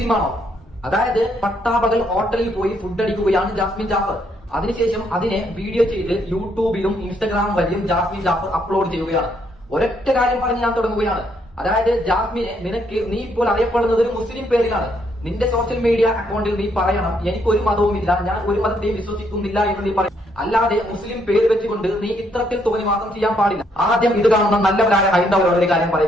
അതായത് പട്ടാപകൽ ഹോട്ടലിൽ പോയി ഫുഡ് അടിക്കുകയാണ് ജാസ്മിൻ ജാഫർ. അതിനുശേഷം അതിനെ വീഡിയോ ചെയ്ത് യൂട്യൂബിലും ഇൻസ്റ്റഗ്രാം വഴിയും ജാസ്മിൻ ജാഫർ അപ്ലോഡ് ചെയ്യുകയാണ്. ഒരൊറ്റ കാര്യം പറഞ്ഞ് ഞാൻ തുടങ്ങുകയാണ്. അതായത് ജാസ്മിനെ, നിനക്ക് നീ ഇപ്പോൾ അറിയപ്പെടുന്നത് ഒരു മുസ്ലിം പേരിലാണ്. നിന്റെ സോഷ്യൽ മീഡിയ അക്കൗണ്ടിൽ നീ പറയണം, എനിക്കൊരു മതവുമില്ല, ഞാൻ ഒരു മതത്തെയും വിശ്വസിക്കുന്നില്ല എന്ന് നീ പറയും. അല്ലാതെ മുസ്ലിം പേര് വെച്ചുകൊണ്ട് നീ ഇത്തരത്തിൽ തോന്നിവാസം ചെയ്യാൻ പാടില്ല. ആദ്യം ഇത് കാണുന്ന നല്ലവരായ ഹൈന്ദവരോട് ഒരു കാര്യം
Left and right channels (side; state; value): both; normal; correlation 0.72